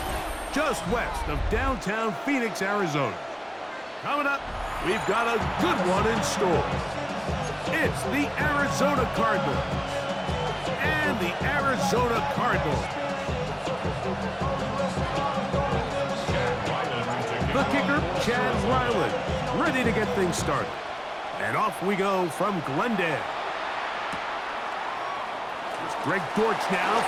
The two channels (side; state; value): both; identical; correlation 1.00